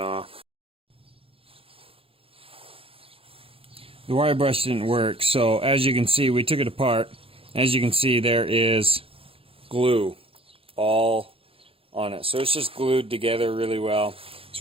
The wire brush didn't work, so as you can see, we took it apart. As you can see, there is glue all on it. So it's just glued together really well.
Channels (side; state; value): left; late; 0.27 ms